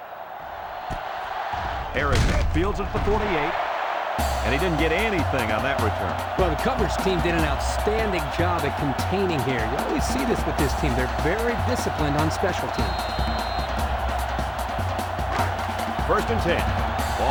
Harrison fields it at the 48, and he didn't get anything on that return. Well, the coverage team did an outstanding job at containing here. You always see this with this team. They're very disciplined on special teams. First and 10.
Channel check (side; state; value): both; identical; correlation 1.00